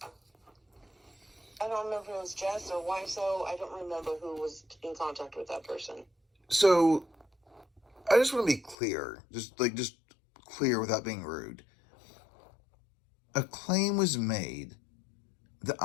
I don't remember if it was Jess or Wiso. I don't remember who was in contact with that person. So, I just want to be clear. Just clear without being rude. A claim was made that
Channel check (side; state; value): right; drops out; at 8.8 s